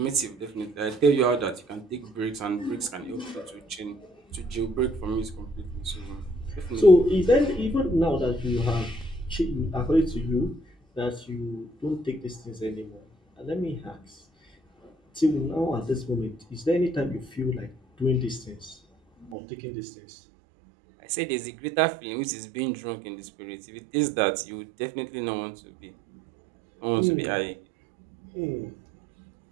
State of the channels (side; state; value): left; drops out; at 19.4 s